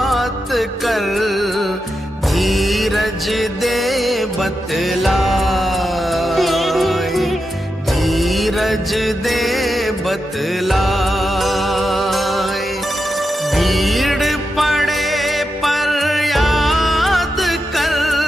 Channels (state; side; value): normal; both; correlation 0.88